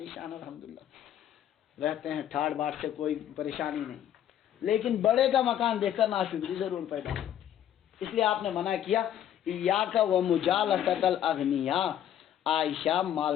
شان، الحمدللہ رہتے ہیں، ٹھاڑ باٹ سے کوئی پریشانی نہیں، لیکن بڑے کا مکان دیکھ کر ناشکری ضرور پیدا ہوتی ہے۔ اس لیے آپ نے منع کیا ایاک ومجالسۃ الاغنیاء، عائشہ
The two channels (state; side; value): quieter; right; 10.7 dB